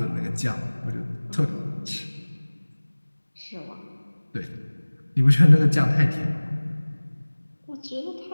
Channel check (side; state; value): both; inverted; correlation -1.00